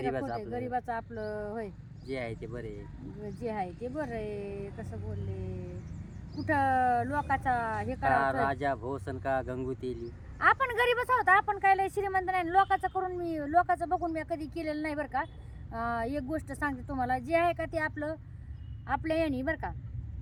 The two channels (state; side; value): identical; both; correlation 1.00